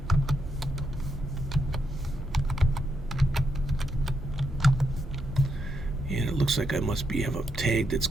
And it looks like I must have a tag that's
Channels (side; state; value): both; normal; correlation 0.80